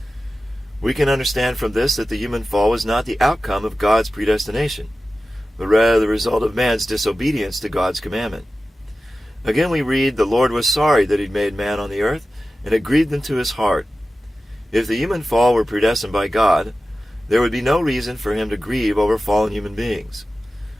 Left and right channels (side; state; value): both; normal; correlation 0.94